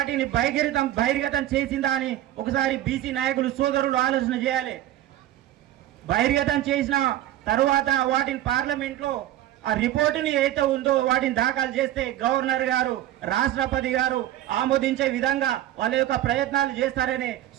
బహిర్గతం చేసిందా అని ఒకసారి బీసీ నాయకులు సోదరులు ఆలోచన చేయాలి. బహిర్గతం చేసిన తరువాత వాటిని పార్లమెంట్లో ఆ రిపోర్టుని ఏదైతే ఉందో వాటిని దాఖలు చేస్తే గవర్నర్ గారు, రాష్ట్రపతి గారు ఆమోదించే విధంగా వాళ్ళ యొక్క ప్రయత్నాలు చేస్తారనే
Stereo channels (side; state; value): left; quieter; 13.5 dB